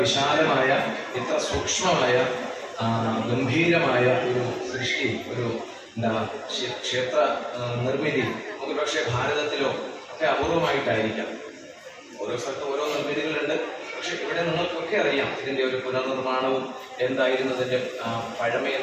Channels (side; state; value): both; identical; correlation 1.00